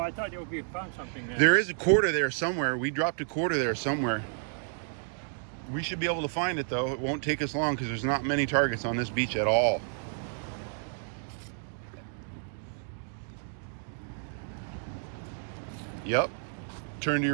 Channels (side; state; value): left; silent; digital silence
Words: thought you found something there. There is a quarter there somewhere. We dropped a quarter there somewhere. We should be able to find it though. It won't take us long because there's not many targets on this beach at all. Yep. Turn to